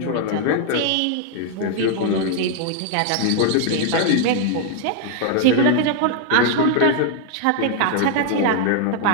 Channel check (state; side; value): different; both; correlation 0.00